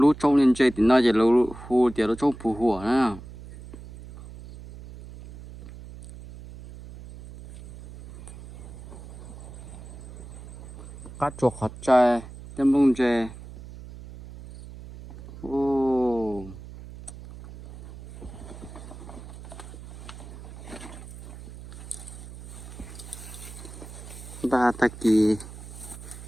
trong lên chơi thì nó chỉ lú hồ thì nó trong phù hỏa nè cá chuột hot chơi tem bông chơi ô ba ta kỳ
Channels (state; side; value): noise; right; hum, 14 dB below the sound